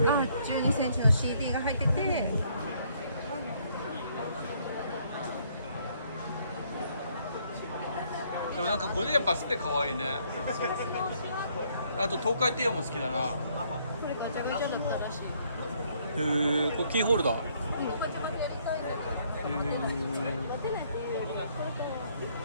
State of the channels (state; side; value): inverted; both; correlation -0.67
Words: 12センチの CD が入ってて、でもなんかこれやっぱスペ可愛いね。あと東海帝王も好きだな。これガチャガチャだったらしい。これキーホルダー。